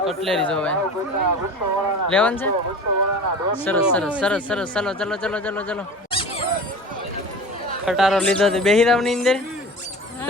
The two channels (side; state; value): both; normal; correlation 0.37